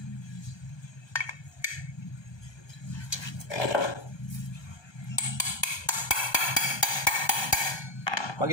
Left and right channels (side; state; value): right; late; 1.2 ms